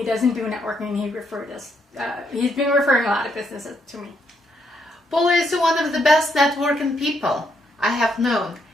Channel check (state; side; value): normal; both; correlation 0.75